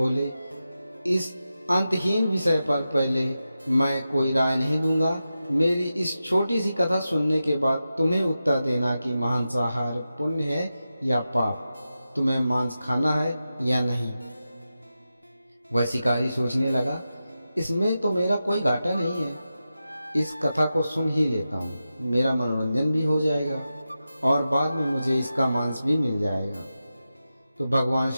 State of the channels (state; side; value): inverted; both; correlation -0.92